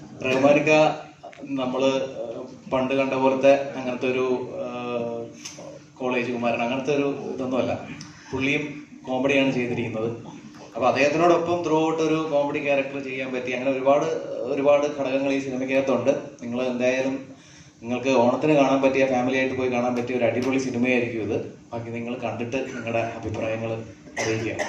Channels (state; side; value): identical; both; correlation 1.00